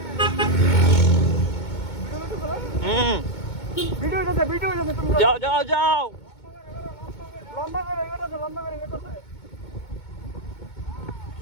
যাও যাও যাও,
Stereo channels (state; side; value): late; right; 2.2 ms